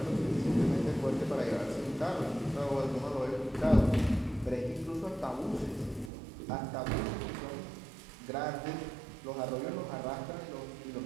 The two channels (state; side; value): drops out; left; at 6.1 s